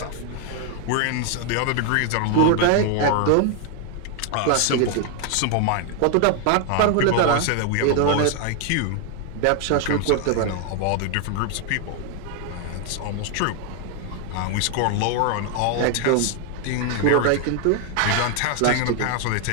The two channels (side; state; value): both; different; correlation 0.00